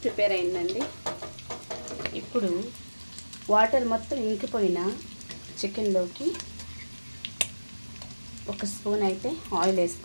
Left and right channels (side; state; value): both; inverted; correlation -1.00